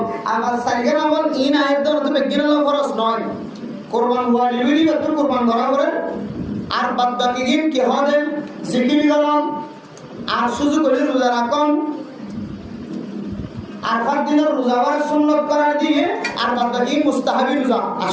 আবার সাইগার আমল ইন আয়াত দ্বারা তো বেগিনাল খরচ নয় কুরবান হওয়া লিবি তো কুরবান করা করে আর বাদ বাকি দিন কি হবে জিকির করুন আর সুযোগ হলে রোজা রাখুন আর পাঁচ দিনের রোজা হওয়ার সুন্নত করার দিয়ে আর বাদ বাকি মুস্তাহাবি রোজা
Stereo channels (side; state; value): both; identical; correlation 1.00